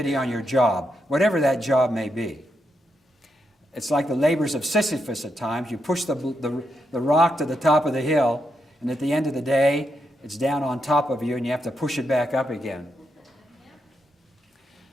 on your job, whatever that job may be. It's like the labors of Sisyphus at times. You push the rock to the top of the hill, and at the end of the day, it's down on top of you, and you have to push it back up again.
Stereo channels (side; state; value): both; normal; correlation 0.82